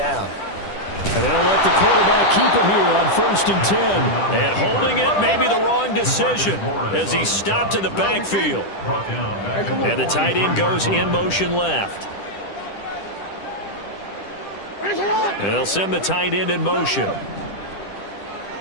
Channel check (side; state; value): right; late; 10 ms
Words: And they'll let the quarterback keep it here on 1st and 10. And holding it may be the wrong decision as he stopped in the backfield. And the tight end goes in motion left. And they'll send the tight end in motion.